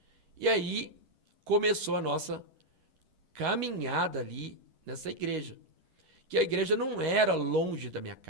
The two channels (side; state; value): left; late; 11 ms